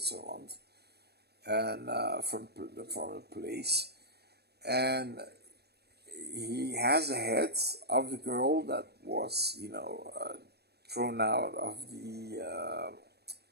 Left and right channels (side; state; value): left; late; 0.47 ms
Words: and from the police, and he has the head of the girl that was thrown out of the